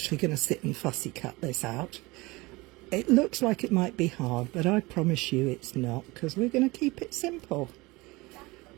going to sit and fussy cut this out. It looks like it might be hard, but I promise you it's not, because we're going to keep it simple.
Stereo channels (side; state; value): left; quieter; 22.7 dB